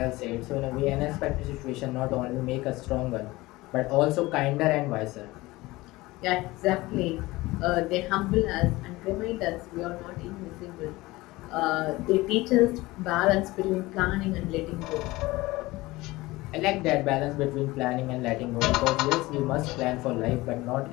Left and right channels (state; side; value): quieter; right; 20.1 dB